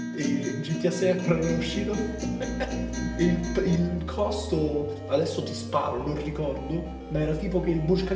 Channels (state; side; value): identical; both; correlation 1.00